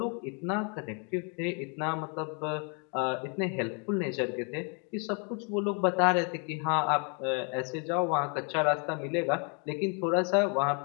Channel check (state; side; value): quieter; right; 36.9 dB